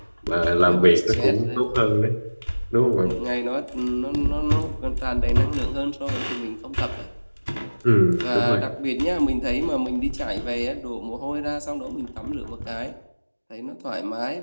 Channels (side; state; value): both; inverted; correlation -1.00